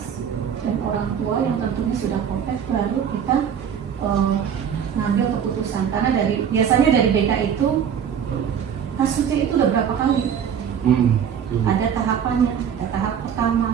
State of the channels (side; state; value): left; quieter; 8.1 dB